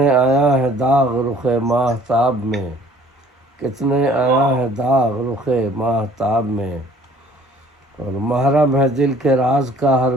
آیا ہے داغ رخ ماہتاب میں، کتنے آیا ہے داغ رخ ماہتاب میں، اور محرم ہے دل کے راز کا ہر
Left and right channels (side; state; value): both; normal; correlation 0.55